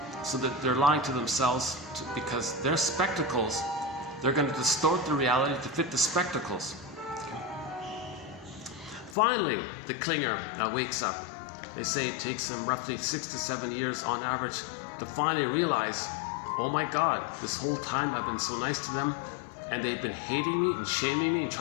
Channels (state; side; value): drops out; right; at 9.2 s